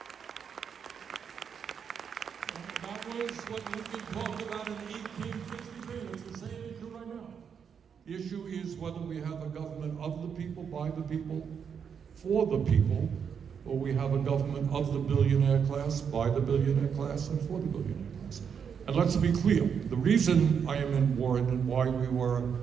That was what Lincoln talked about in 1863. It's the same issue right now. The issue is whether we have a government of the people, by the people, for the people, or we have a government of the billionaire class, by the billionaire class, and for the billionaire class. And let's be clear, the reason I am in Warren and why we were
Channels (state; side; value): quieter; left; 7.1 dB